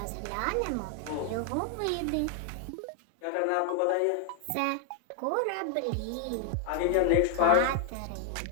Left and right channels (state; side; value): different; both; correlation 0.00